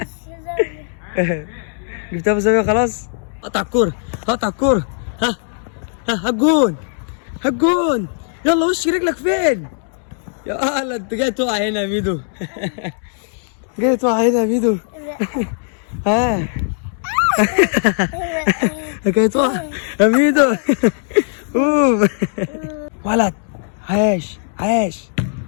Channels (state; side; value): silent; right; digital silence